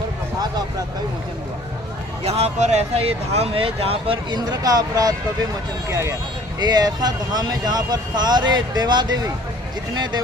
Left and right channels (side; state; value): both; normal; correlation 0.53